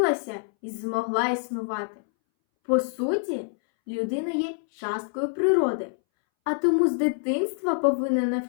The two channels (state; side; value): silent; right; 61 dB below the other